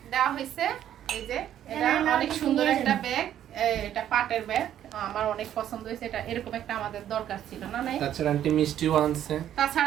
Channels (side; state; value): left; quieter; 10.9 dB